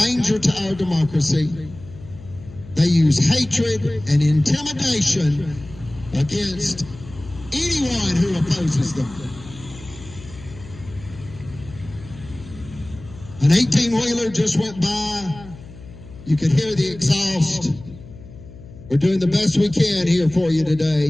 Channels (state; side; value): noise; left; hum, 17 dB below the sound